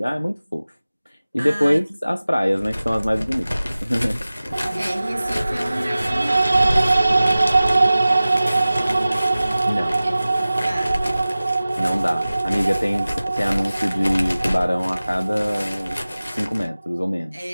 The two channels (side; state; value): both; inverted; correlation -0.97